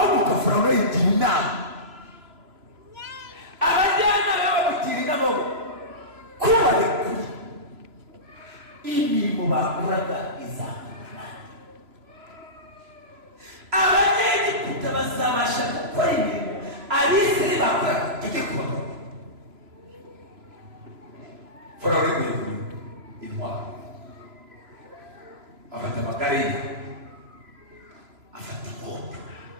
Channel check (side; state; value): left; late; 3.0 ms